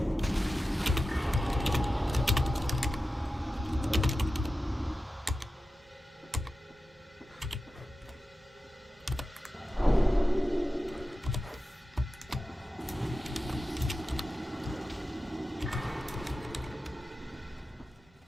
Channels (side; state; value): both; normal; correlation 0.94